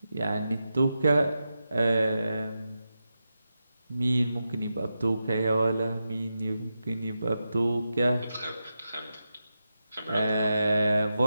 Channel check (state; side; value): inverted; both; correlation -0.89